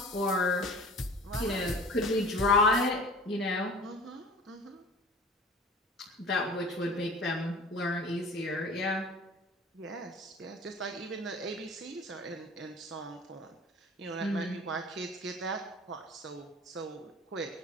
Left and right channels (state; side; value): normal; both; correlation 0.42